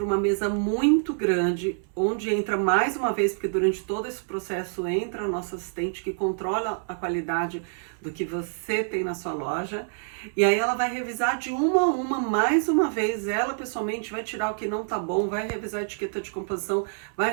uma mesa muito grande, onde entra mais uma vez, porque durante todo esse processo entra a nossa assistente que controla a qualidade do que você tem na sua loja. E aí ela vai revisar de uma a uma, mais uma vez, ela pessoalmente vai tirar o que não tá bom, vai revisar a etiqueta de composição,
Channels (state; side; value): silent; left; 58 dB below the other